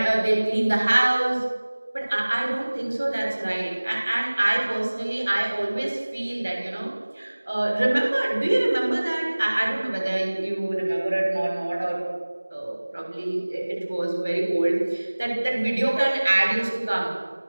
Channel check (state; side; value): inverted; both; correlation -1.00